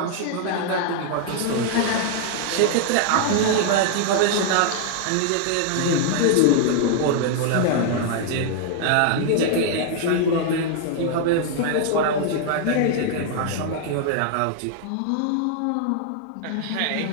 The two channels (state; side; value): different; both; correlation 0.00